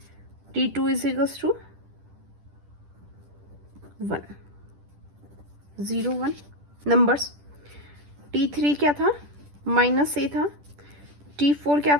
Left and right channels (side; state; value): left; late; 10 ms